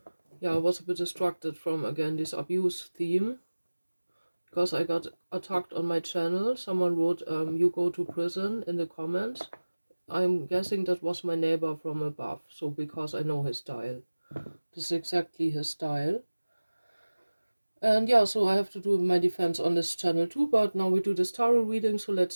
yeah, I was a bit distracted from again this abuse theme. Because I got attacked on my channel. Someone wrote, you go to prison in the comments. I'm guessing that was my neighbor from above, so because I know his style. This is exactly his style. And yeah, so I have to do my defense on this channel too, but now we do this tarot reading, so let's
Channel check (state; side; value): inverted; both; correlation -1.00